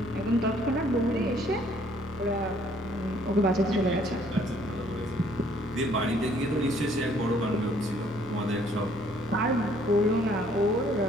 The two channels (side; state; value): both; normal; correlation 0.62